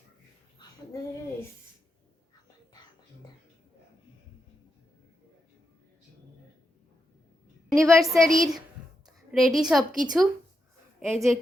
অ্যানিভার্সারির রেডি সব কিছু, এই যে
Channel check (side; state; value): both; normal; correlation 0.85